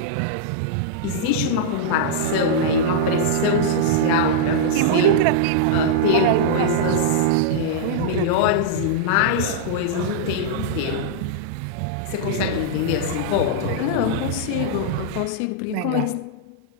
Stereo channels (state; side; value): different; both; correlation -0.02